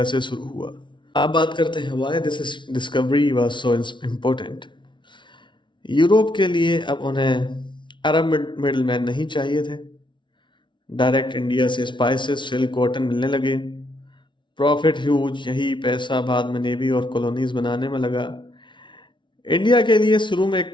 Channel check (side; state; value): right; late; 0.24 ms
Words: से शुरू हुआ। आप बात करते हैं why this discovery was so important. Europe के लिए अब उन्हें अरब मिडल मैन नहीं चाहिए थे। डायरेक्ट इंडिया से स्पाइसेस, सिल्क, कॉटन मिलने लगे, प्रॉफिट ह्यूज, यही पैसा बाद में नेवी और कॉलोनीज बनाने में लगा। इंडिया के लिए शुरू में एक